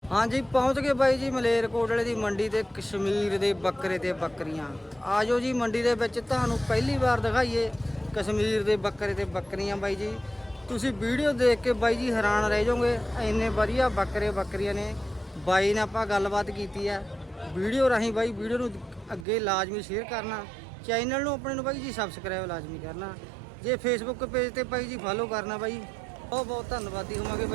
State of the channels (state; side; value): drops out; left; at 19.2 s